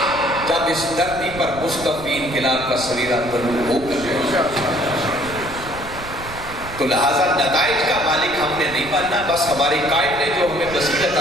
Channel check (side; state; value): right; noise; rumble, 14 dB below the sound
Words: جب اس دھرتی پر مستقبل انقلاب کا سویرا طلوع ہو کر، تو لہذا نتائج کا مالک ہم نے نہیں بننا، بس ہمارے قائد نے جو ہمیں بصیرت